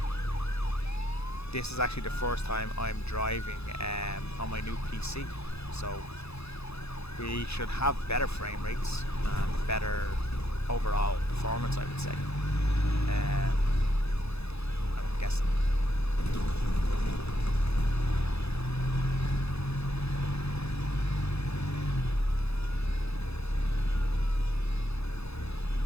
This is actually the first time I'm driving on my new PC. So we should have better frame rates and better overall performance, I would say. I'm guessing.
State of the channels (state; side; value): late; right; 0.79 ms